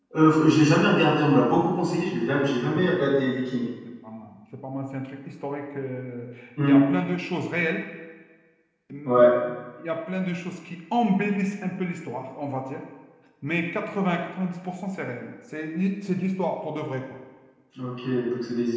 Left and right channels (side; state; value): both; identical; correlation 1.00